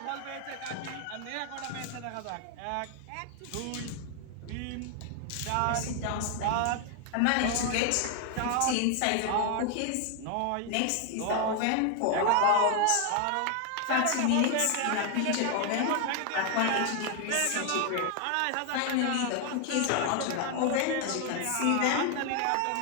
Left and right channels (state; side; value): different; both; correlation 0.01